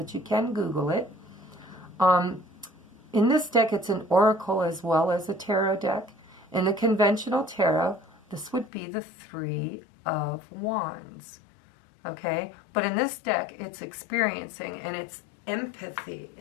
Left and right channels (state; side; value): drops out; right; at 8.7 s